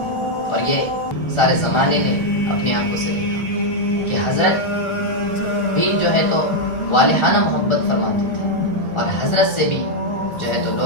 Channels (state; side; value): late; right; 1.4 ms